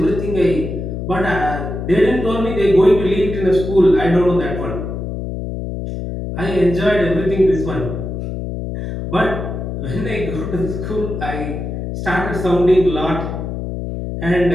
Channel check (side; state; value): left; noise; hum, 5 dB below the sound